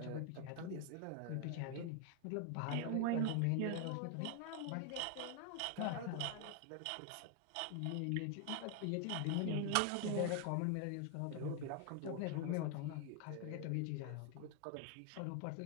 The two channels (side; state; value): both; different; correlation 0.00